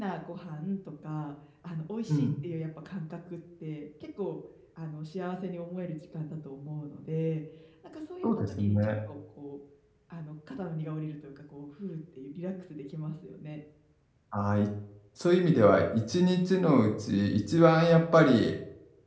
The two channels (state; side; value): identical; both; correlation 1.00